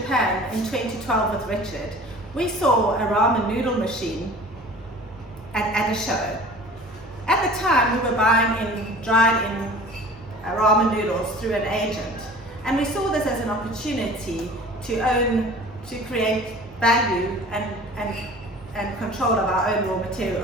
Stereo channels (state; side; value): normal; both; correlation 0.44